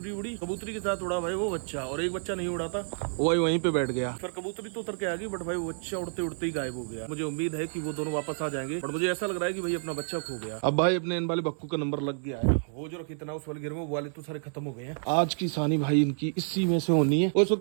उड़ी, कबूतरी के साथ उड़ा भाई वो बच्चा, और एक बच्चा नहीं उड़ा था वो भाई वहीं पे बैठ गया। फिर कबूतरी तो उतर के आ गई बट भाई वो बच्चा उड़ते उड़ते ही गायब हो गया। मुझे उम्मीद है कि वो दोनों वापस आ जाएंगे, बट मुझे ऐसा लग रहा है कि भाई अपना बच्चा खो गया। अब भाई अपने इन वाले बक्कू का नंबर लग गया है, वो जो रखी था उस वाले घर में, वो वाले तो सारे खत्म हो गए हैं। आज की सानी भाई इनकी इसी में से होनी है। ओ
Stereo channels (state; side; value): silent; left; 58 dB below the other